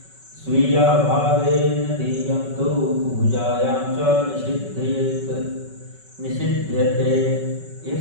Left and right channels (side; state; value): left; late; 5.3 ms